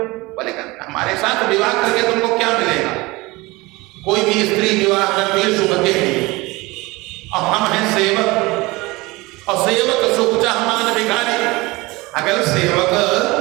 बोले हमारे साथ विवाह करके तुमको क्या मिलेगा? कोई भी स्त्री विवाह करती है सुख के लिए, और हम हैं सेवक, और सेवक सुख चाह मान भिखारी। अगर सेवक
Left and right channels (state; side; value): quieter; left; 22.3 dB